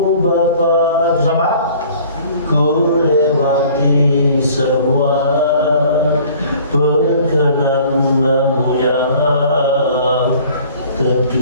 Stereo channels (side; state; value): both; inverted; correlation -0.51